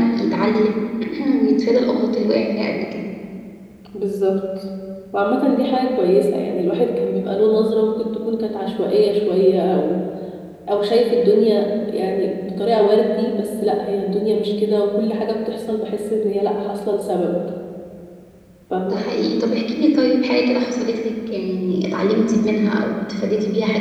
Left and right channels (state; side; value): identical; both; correlation 1.00